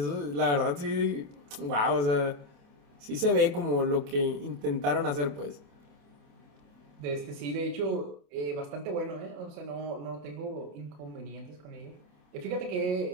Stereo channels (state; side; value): late; left; 28 ms